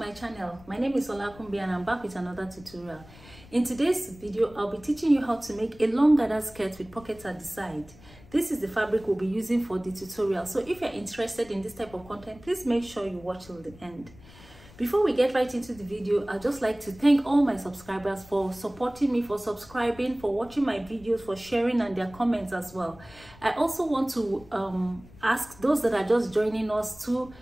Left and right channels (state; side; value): noise; left; rumble, 22 dB below the sound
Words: channel. My name is Olakunbi and I'm back with another tutorial. In today's video, I'll be teaching you how to make a long gathered skirt with pockets at the side. This is the fabric we'll be using for the tutorial. So if you're interested in this type of content, please make sure you watch till the end. Before we get right into the video, I'd just like to thank all my subscribers for supporting me, for subscribing, for watching my videos, for sharing and their comments as well. I also want to ask those that are just joining us to